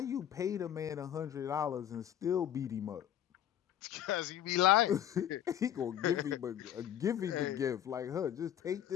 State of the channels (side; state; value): right; quieter; 10.7 dB